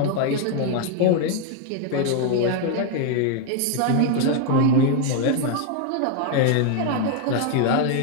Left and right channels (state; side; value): different; both; correlation 0.01